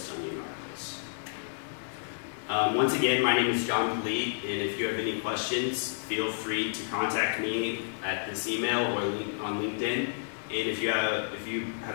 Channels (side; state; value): right; silent; digital silence